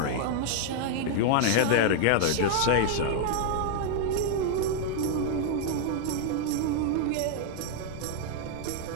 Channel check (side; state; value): both; different; correlation 0.00